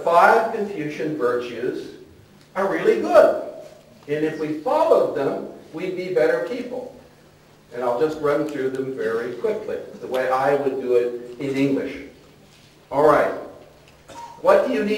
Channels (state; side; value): identical; both; correlation 1.00